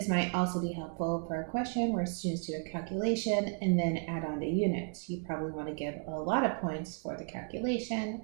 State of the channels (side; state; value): left; quieter; 39.8 dB